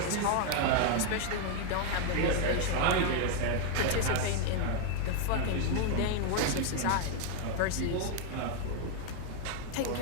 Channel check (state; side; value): different; both; correlation 0.01